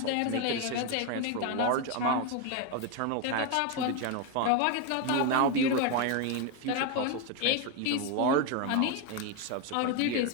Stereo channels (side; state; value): both; different; correlation 0.02